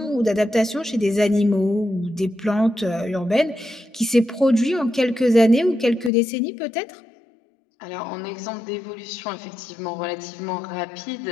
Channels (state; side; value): drops out; right; at 6.1 s